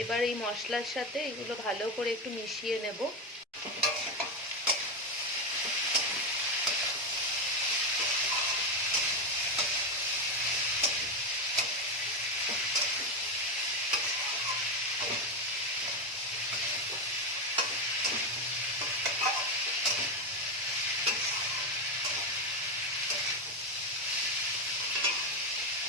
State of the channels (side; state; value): both; normal; correlation 0.11